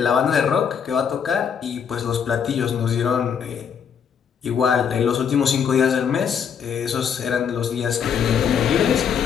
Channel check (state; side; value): quieter; right; 7.4 dB